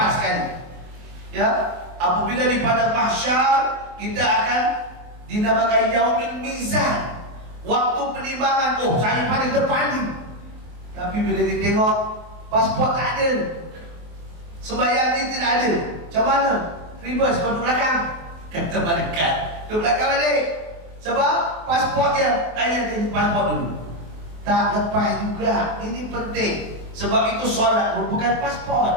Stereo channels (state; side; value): late; left; 23 ms